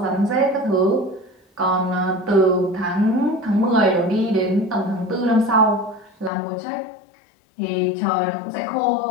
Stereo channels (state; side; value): drops out; right; at 6.3 s